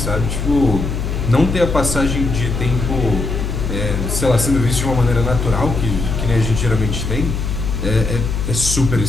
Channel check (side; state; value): left; noise; hum, 3 dB below the sound